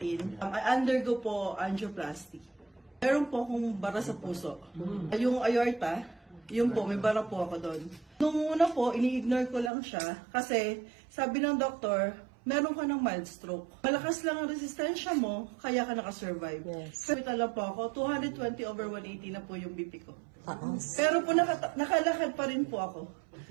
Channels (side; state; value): left; drops out; at 9.7 s